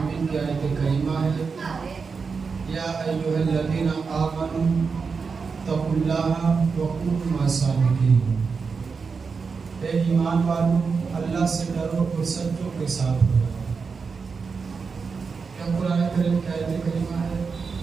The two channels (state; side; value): quieter; left; 5.2 dB